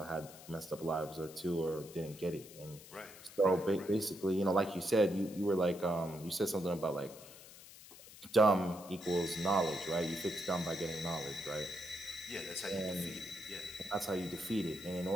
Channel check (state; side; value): noise; left; hiss, 18 dB below the sound